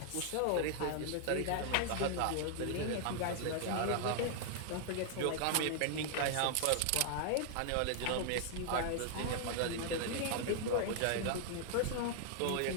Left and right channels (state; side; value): different; both; correlation 0.00